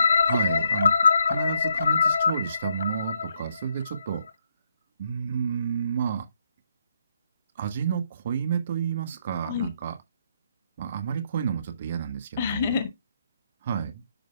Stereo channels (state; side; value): inverted; both; correlation -0.74